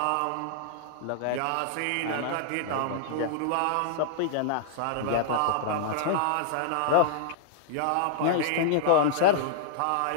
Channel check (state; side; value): different; both; correlation -0.01